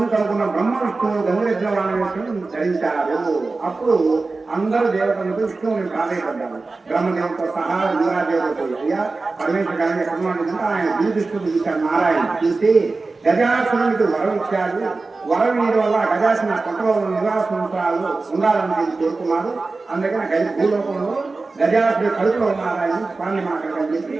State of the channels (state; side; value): quieter; left; 3.7 dB